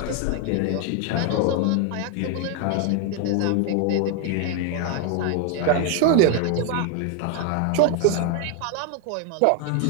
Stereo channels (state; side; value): different; both; correlation 0.00